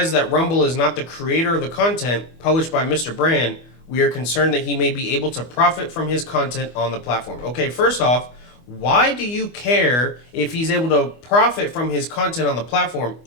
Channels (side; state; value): right; late; 25 ms